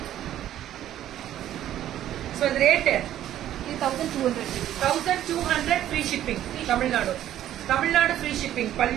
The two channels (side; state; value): left; quieter; 12.1 dB